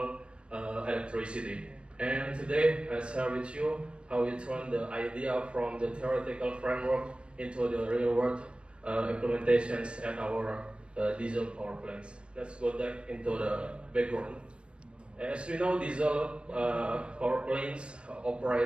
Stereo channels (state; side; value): late; left; 0.058 ms